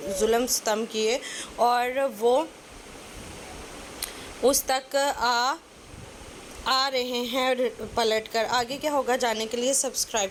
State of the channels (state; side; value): identical; both; correlation 1.00